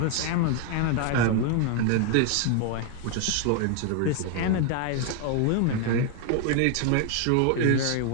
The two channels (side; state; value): both; different; correlation 0.00